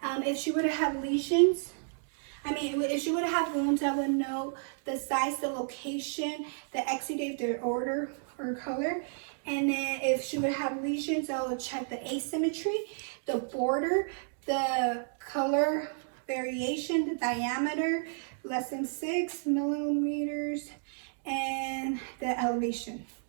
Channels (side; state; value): left; silent; digital silence